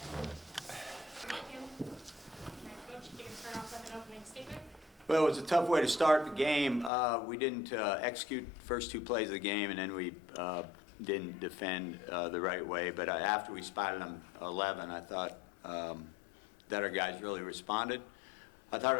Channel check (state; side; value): drops out; right; at 6.9 s